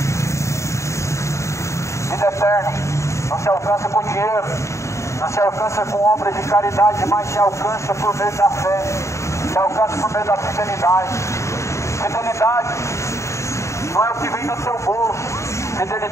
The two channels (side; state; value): right; late; 0.14 ms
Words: Vida eterna não se alcança com dinheiro, não se alcança com obras de caridade, mas se alcança por meio da fé, se alcança por meio da fidelidade. Fidelidade não é o que vem do seu bolso.